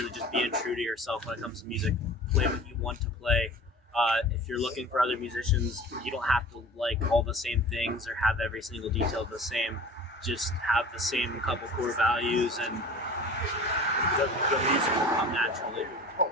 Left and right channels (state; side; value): normal; both; correlation 0.41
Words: just being true to yourself when it comes to music. Play what you want to play. If you're looking for other musicians, you don't have to like all the same things or have every single detail the same. Just have the same couple core values, and the music will come naturally.